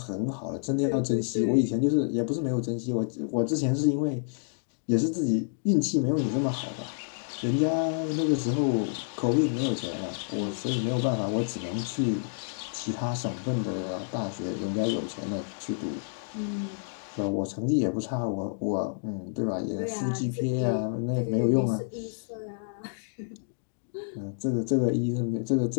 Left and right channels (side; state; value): right; silent; digital silence